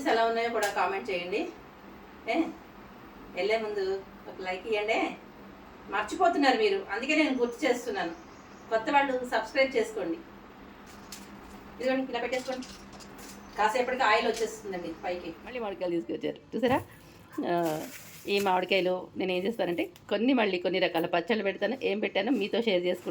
ఎలా ఉన్నాయో కూడా కామెంట్ చేయండి. ఏ వెళ్ళే ముందు ఒక లైక్ ఇవ్వండి. మర్చిపోతున్నారు మీరు, అందుకే నేను గుర్తు చేస్తున్నాను. కొత్త వాళ్ళు సబ్స్క్రైబ్ చేసుకోండి. ఇదిగోండి ఇలా పెట్టేసుకోండి. కాసేపటికి ఆయిల్ వచ్చేస్తుందండి పైకి. మళ్ళీ మామిడికాయలు తీసుకొచ్చారు చూసారా. ఈ మామిడికాయలు నేను ఏం చేస్తానంటే కొన్ని రకాల పచ్చళ్ళు పెడతాను. ఏం పెట్టానో మీతో షేర్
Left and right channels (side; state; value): both; identical; correlation 1.00